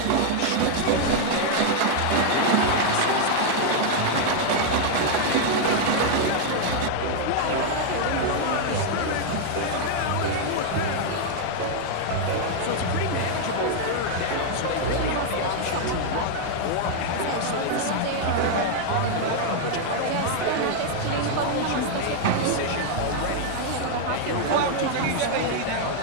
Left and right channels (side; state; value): both; different; correlation 0.00